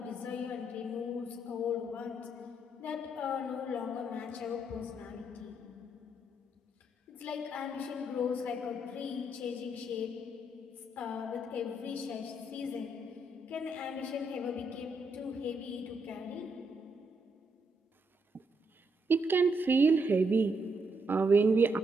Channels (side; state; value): both; normal; correlation 0.77